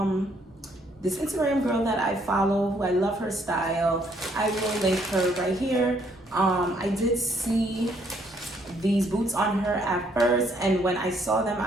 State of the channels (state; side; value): normal; both; correlation 0.68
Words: girl that I follow, who I love her style. I will link her right here. I did see these boots on her at first, and when I saw them,